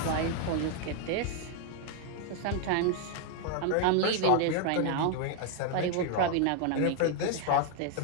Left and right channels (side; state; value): both; different; correlation 0.00